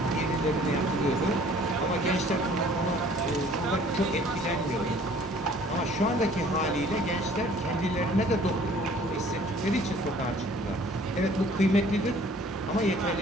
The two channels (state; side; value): normal; both; correlation 0.54